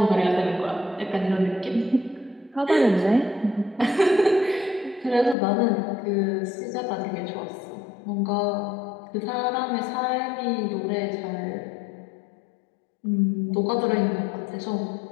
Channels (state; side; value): drops out; right; at 5.4 s